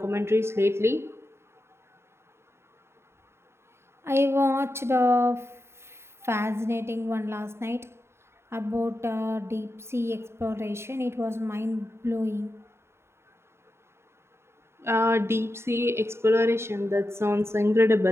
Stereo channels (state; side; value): late; left; 0.12 ms